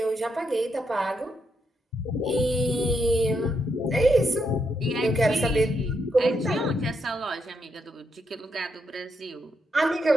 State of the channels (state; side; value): normal; both; correlation 0.80